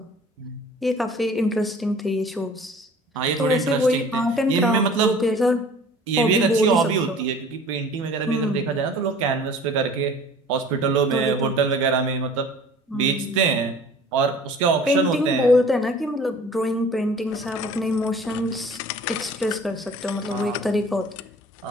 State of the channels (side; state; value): both; normal; correlation 0.47